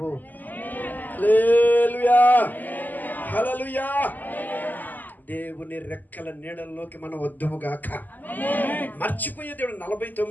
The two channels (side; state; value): right; late; 0.085 ms